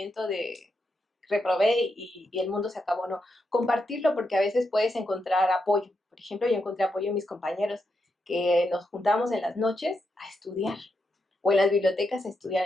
de reprobé y el mundo se acabó, no. Compartirlo porque a veces puedes encontrar apoyo. Por ejemplo, yo encontré apoyo en mis compañeros que nos juntamos en las noches a estudiar o en las bibliotecas a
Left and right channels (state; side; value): normal; both; correlation 0.83